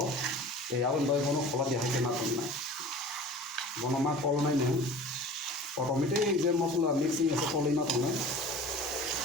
Awin doi kono kola dia hai kena kon nai. Bono ma kol nai ne. Automatic je masalah mixing ase kol ina ton nai.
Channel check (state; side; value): normal; both; correlation 0.41